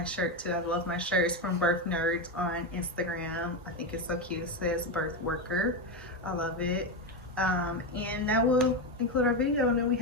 shirt too. I love my shirts from Birth Nerds on Instagram. I think it's so cute. It says Birth Worker. I love it. And that will include our video. And then we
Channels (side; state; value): both; normal; correlation 0.12